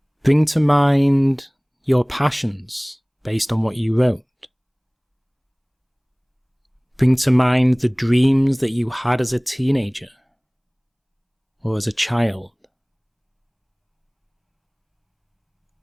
Bring to mind your passions based on what you wrote. Bring to mind the dreams that you had as a teenager or as a child.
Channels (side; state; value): both; identical; correlation 1.00